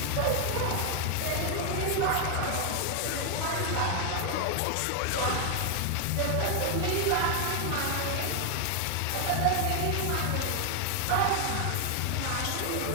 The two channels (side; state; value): both; different; correlation 0.00